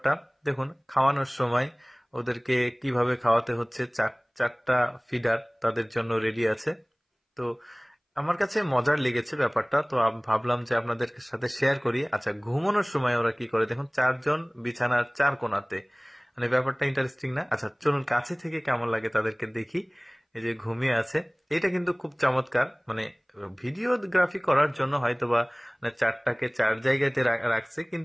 দেখুন। খাওয়ানোর সময় ওদেরকে কিভাবে খাওয়াতে হচ্ছে, 4টা ফিডার তাদের জন্য রেডি আছে। তো আমার কাছে মজার লেগেছে ব্যাপারটা, তো ভাবলাম যে আপনাদের সাথে শেয়ার করি। আচ্ছা, ঘুমানোর সময় ওরা কি করে দেখুন, 4জন বিছানার 4 কোণাতে, মানে ব্যাপারটা ইন্টারেস্টিং না? আচ্ছা চলুন কাছে থেকে কেমন লাগে তাদেরকে দেখি। এই যে ঘুমিয়ে আছে, এটা কিন্তু খুব চমৎকার। মানে ভিডিওগ্রাফি করার জন্য হয়তোবা 4টাকে 4 জায়গাতে রাখছে,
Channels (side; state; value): both; identical; correlation 1.00